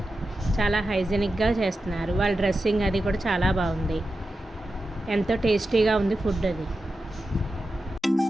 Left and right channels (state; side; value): normal; both; correlation 0.91